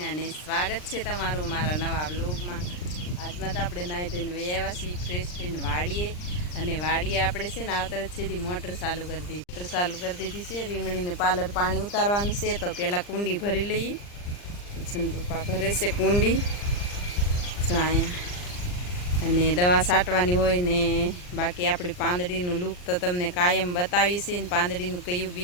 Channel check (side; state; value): right; late; 39 ms